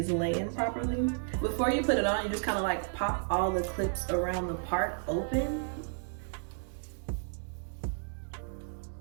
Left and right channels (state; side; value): silent; left; digital silence